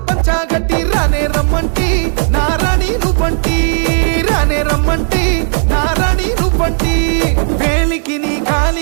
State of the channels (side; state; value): left; silent; 62 dB below the other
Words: పంచాగట్టి రానే రమ్మంటి నారాణి నువ్వంటి రానే రమ్మంటి నారాణి నువ్వంటి వేలికి నీ